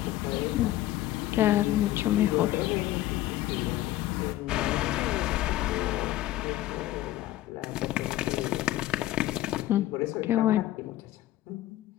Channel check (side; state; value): right; quieter; 14.9 dB